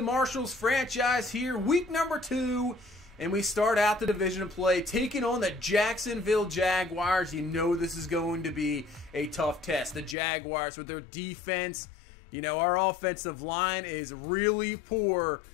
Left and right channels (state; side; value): drops out; right; at 10.2 s